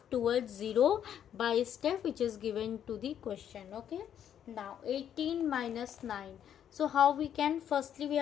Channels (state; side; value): quieter; right; 9.5 dB